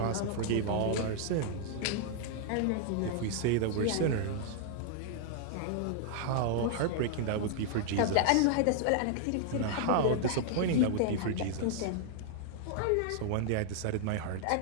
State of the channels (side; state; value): both; different; correlation 0.00